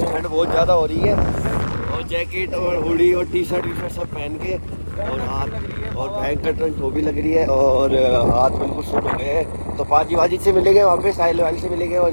ठंड बहुत ज़्यादा हो रही है, और जैकेट और हुडी और टी शर्ट सब पहन के, और हाथ और भयंकर ठंड वो भी लग रही है, और हाथ बिल्कुल सुन हो गए हैं। तो पाजी से मिलेंगे वहाँ पे, साहिल वाली से मिलेंगे, और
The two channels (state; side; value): inverted; both; correlation -1.00